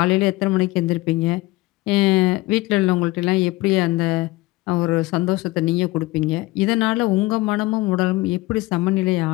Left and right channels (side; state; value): right; quieter; 20.3 dB